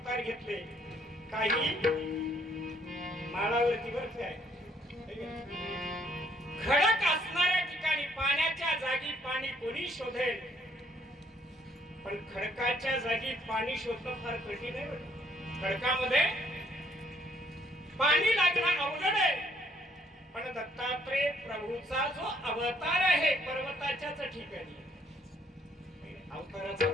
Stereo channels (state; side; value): normal; both; correlation 0.67